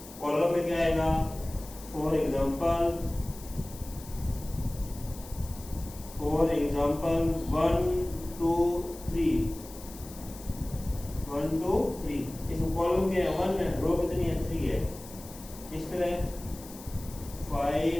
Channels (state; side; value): noise; left; hiss, 17 dB below the sound